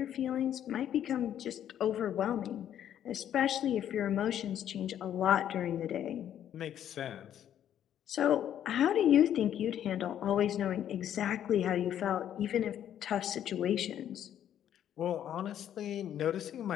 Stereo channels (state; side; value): quieter; right; 10.4 dB